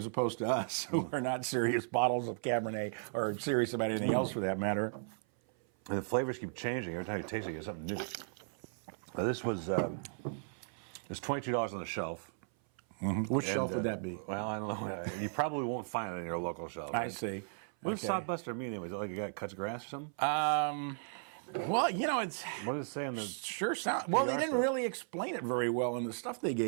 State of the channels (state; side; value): silent; left; 54 dB below the other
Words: opposed to us, who are not serious bottles of Cabernet or serious about anything else for that matter. And the flavors keep changing every time you taste it. You get something new. Now, this was it's $22 on the shelf. Mm-hmm. Which shelf would that be? Well, I don't know. You probably won't find it in your local shelf. I see. What does Sodbuster mean anyway? Is it like a guy that cuts grass or something? Well, it's... What does it say on the... Sure sound... Well, they didn't really explain it very well in the stuff they